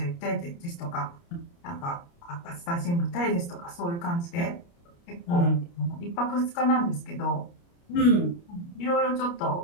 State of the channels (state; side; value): late; right; 29 ms